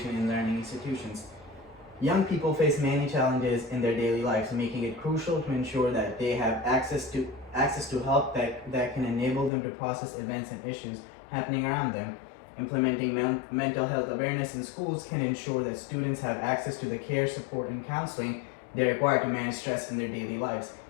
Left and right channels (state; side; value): drops out; right; at 9.5 s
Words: in learning institutions. Young people face many challenges in their daily lives, making it crucial to ensure that they have access to help that can enable them to process events and issues happening around them. Implementing mental health awareness in schools can ensure that students have access to the care, support, and counseling they require to manage stress in their daily lives.